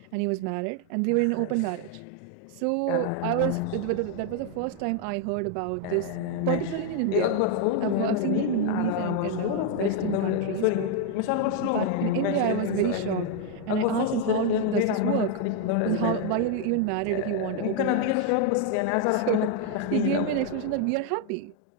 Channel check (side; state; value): both; different; correlation 0.01